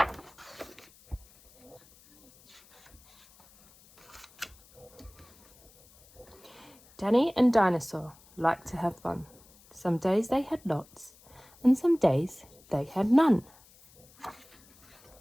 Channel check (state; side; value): noise; left; hiss, 27 dB below the sound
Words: Danny and Dinosaur liked to have fun. Some days they had lots, and some days they had none.